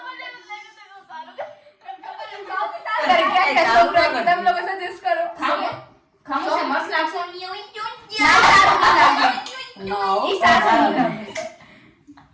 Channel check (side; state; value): both; identical; correlation 1.00